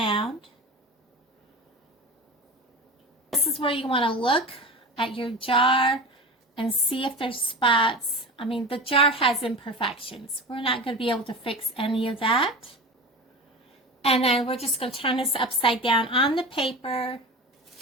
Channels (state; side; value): normal; both; correlation 0.30